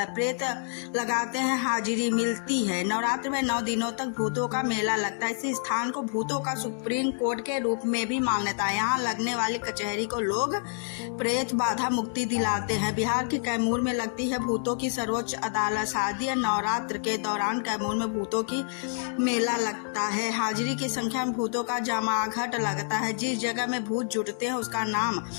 प्रेत लगाते हैं, हाजिरी मिलती है। नवरात्र में 9 दिनों तक भूतों का मेला लगता है। इस स्थान को भूतों का सुप्रीम कोर्ट के रूप में भी मान्यता है। यहाँ लगने वाली कचहरी को लोग प्रेत बाधा मुक्ति दिलाते हैं। बिहार के कैमूर में लगती है भूतों की सर्वोच्च अदालत। शारदीय नवरात्र के दौरान कैमूर में भूतों की मेला लगता है। हाजिरी की संख्या में भूतों का जमाघट लगता है। जिस जगह में भूत जुटते हैं उसका नाम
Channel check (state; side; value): silent; right; 59 dB below the other